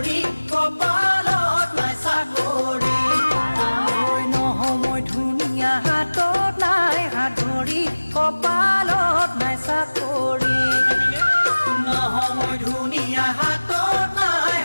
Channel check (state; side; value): inverted; both; correlation -1.00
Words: কপালত নাই চাকৰি ঐ নহয় মই ধুনীয়া হাতত নাই হাত ভৰি কপালত নাই চাকৰি নহয় মই ধুনীয়া হাতত নাই